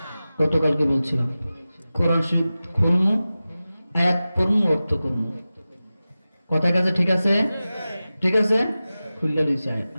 গতকালকে বলছিলাম কোরআন শরীফ খুলমু, আয়াত পড়মু, অর্থ করমু। কথা কাছে ঠিক আছে? ঠিক আছে, খুললে দিয়েছি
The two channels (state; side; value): inverted; both; correlation -0.95